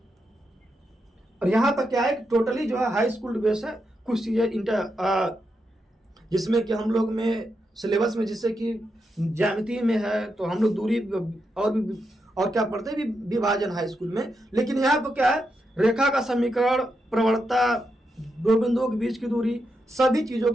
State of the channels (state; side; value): normal; both; correlation 0.84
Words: और यहाँ पर क्या है कि टोटली जो है हाई स्कूल बेस है, कुछ चीजें जिसमें कि हम लोग में सिलेबस में जैसे कि ज्यामिति में है तो हम लोग दूरी और क्या पढ़ते हैं विभाजन हाई स्कूल में। लेकिन यहाँ पर क्या है, रेखा का समीकरण, प्रवणता, दो बिंदुओं के बीच की दूरी, सभी चीजों को